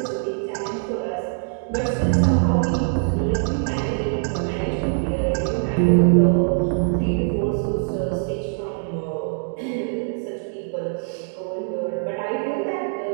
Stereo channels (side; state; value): left; silent; digital silence